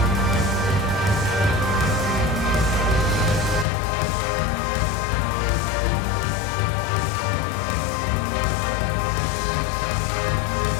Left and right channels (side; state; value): right; drops out; at 3.7 s